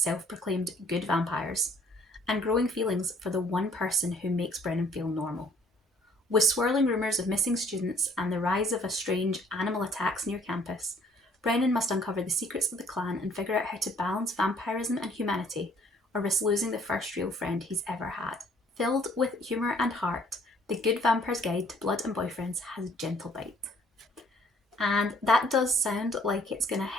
good vampires, and growing feelings for the one person who makes Brennan feel normal. With swirling rumours of missing students and the rise of strange animal attacks near campus, Brennan must uncover the secrets of the clan and figure out how to balance vampirism and humanity, or risk losing the first real friend he's ever had. Filled with humour and heart, The Good Vampire's Guide to Blood and Boyfriends has a gentle bite. And that does sound like it's going to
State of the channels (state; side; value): normal; both; correlation 0.59